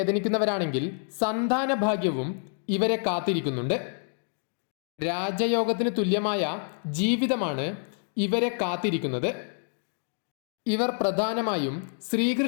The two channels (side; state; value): right; silent; 60 dB below the other